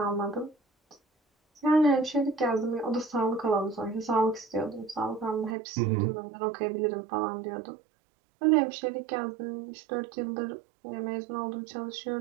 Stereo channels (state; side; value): drops out; left; at 5.6 s